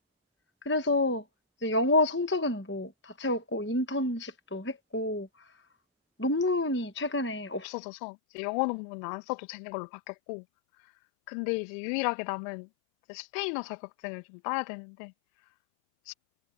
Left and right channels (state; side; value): drops out; right; at 7.7 s